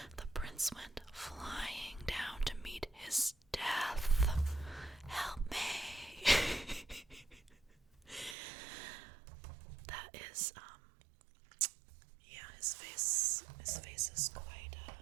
prince went flying down to meet his death. Help me! That is, yeah, his face is quite,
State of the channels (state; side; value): drops out; left; at 8.3 s